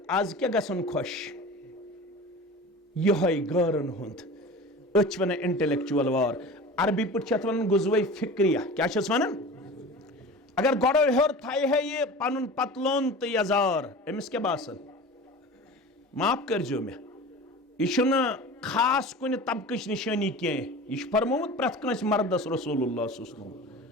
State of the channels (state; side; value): normal; both; correlation 0.35